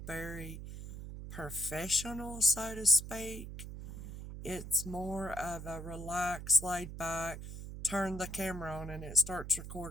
very professional, so to speak. It's more of a relaxed, laid back, turn the camera on and it starts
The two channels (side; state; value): right; noise; hum, 9 dB below the sound